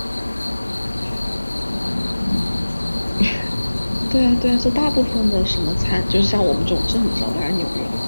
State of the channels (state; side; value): inverted; both; correlation -1.00